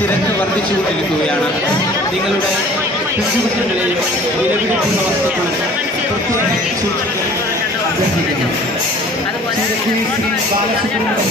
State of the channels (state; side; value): normal; both; correlation 0.49